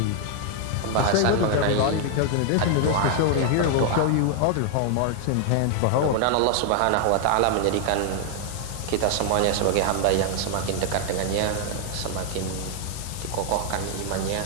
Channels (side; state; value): both; different; correlation 0.00